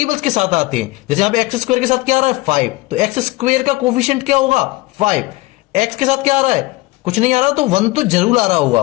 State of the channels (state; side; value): quieter; right; 21.1 dB